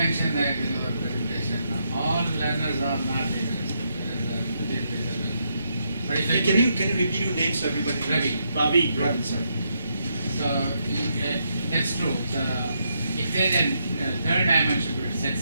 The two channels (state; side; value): inverted; both; correlation -0.78